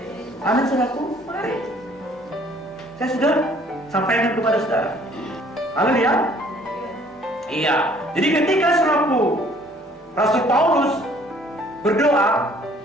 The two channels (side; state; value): both; normal; correlation 0.58